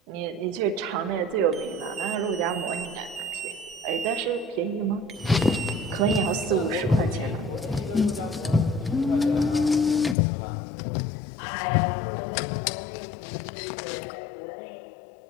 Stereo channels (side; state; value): right; drops out; at 10.2 s